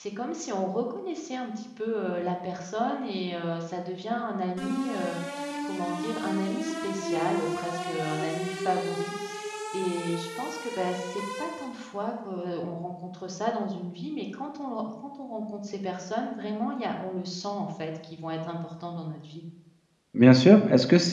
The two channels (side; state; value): both; identical; correlation 1.00